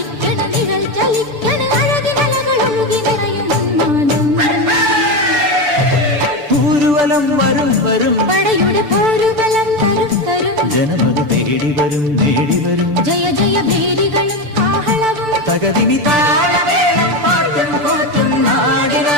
നിഴൽ ചലിക്കണ് അഴകിനലകളൊഴുകി നിറയും ഊരുവലം വരും വരും പടയുടെ പോരുബലം തരും തരും ജനമത് തേടി വരും നേടി വരും ജയ ജയ ഭേരികളും കാഹളവും തകതിനി താളമേളം പാട്ടും കൂട്ടും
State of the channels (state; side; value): late; left; 6.8 ms